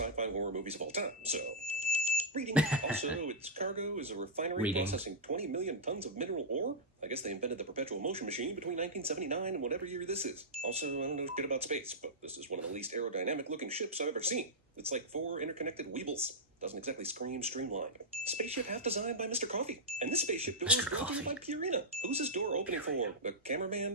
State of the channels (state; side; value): normal; both; correlation -0.10